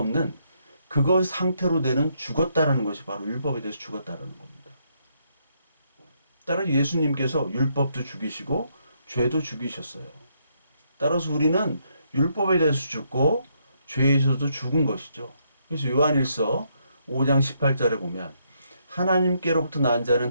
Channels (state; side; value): inverted; both; correlation -0.75